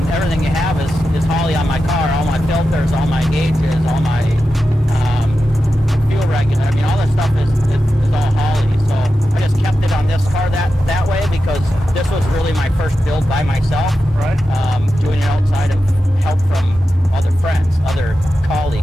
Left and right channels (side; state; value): both; normal; correlation 0.91